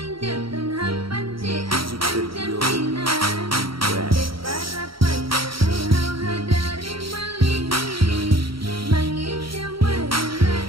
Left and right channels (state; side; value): late; left; 0.74 ms